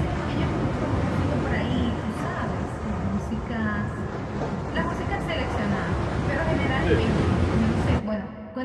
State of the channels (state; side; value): identical; both; correlation 1.00